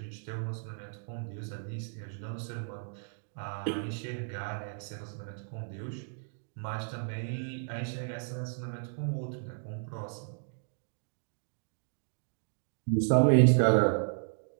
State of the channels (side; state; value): left; silent; digital silence